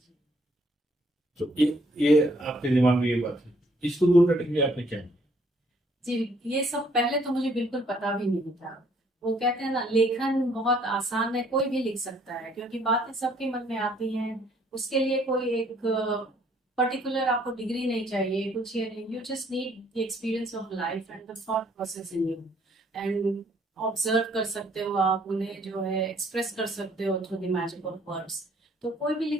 तो ये आपके दिमाग में ये बात है, इसको दूर करने के लिए आपने क्या किया? जी, ये सब पहले तो मुझे बिल्कुल पता भी नहीं था। वो कहते हैं ना, लेखन बहुत आसान है, कोई भी लिख सकता है, क्योंकि बातें सबके मन में आती हैं। उसके लिए कोई एक पर्टिकुलर आपको डिग्री नहीं चाहिए, कुछ ये नहीं। You just need the experience of life and the thought process in you, and observe कर सकते हो आप उन्हें, जो है एक्सप्रेस कर सकते हो through the magic of words. तो कोई भी लिख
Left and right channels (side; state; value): both; normal; correlation 0.64